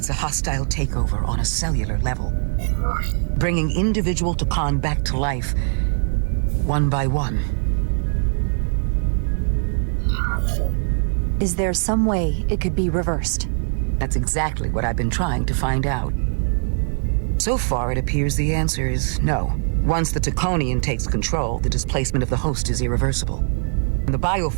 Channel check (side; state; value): left; silent; digital silence